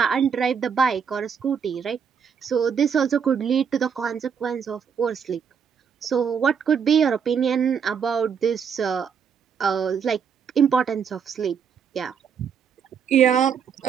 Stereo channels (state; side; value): quieter; left; 7.0 dB